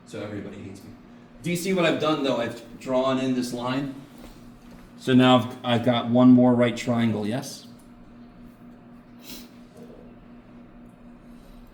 so everybody hates me. Do you see what I've done though? I've drawn in this line. So now I've got one more right triangle, yes?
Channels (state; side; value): identical; both; correlation 1.00